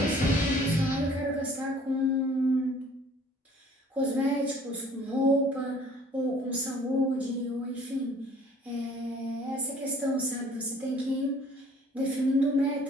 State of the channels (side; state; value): both; normal; correlation 0.54